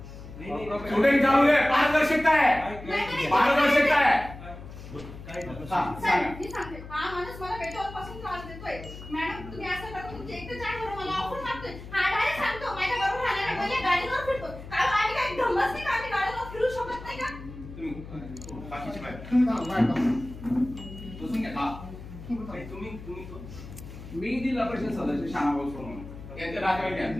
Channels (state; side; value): noise; left; hum, 13 dB below the sound